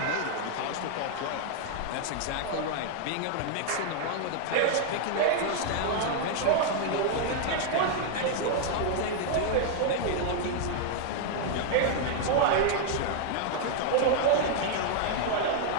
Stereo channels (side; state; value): both; different; correlation 0.00